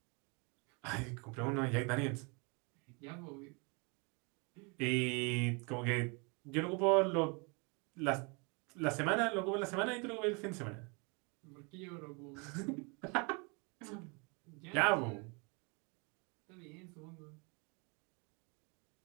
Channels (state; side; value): quieter; left; 32.1 dB